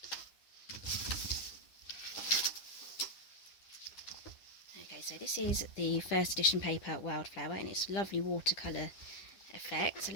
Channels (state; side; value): late; right; 10 ms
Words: Okay, so this is the first edition paper wildflower, and it's a lovely watercolour effect. So